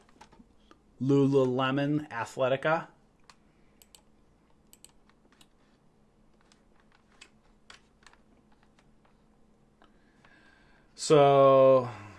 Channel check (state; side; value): identical; both; correlation 1.00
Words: Lululemon Athletica. So